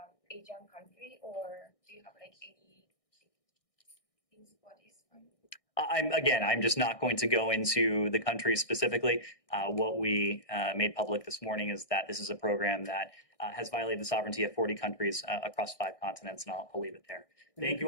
Asian country, or do you have like any things for this one? I'm just not going to go into the countries specifically. What we made public this morning is that this is a program that has violated the sovereignty of 40 countries across 5 continents, and I'll leave it there. Thank you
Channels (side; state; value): right; late; 1.6 ms